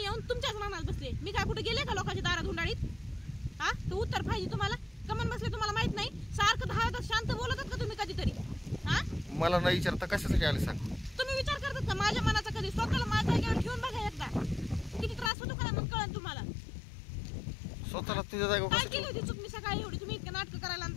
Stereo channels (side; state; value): right; drops out; at 15.3 s